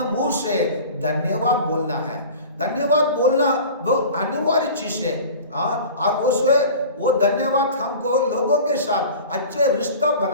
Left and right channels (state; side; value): inverted; both; correlation -0.39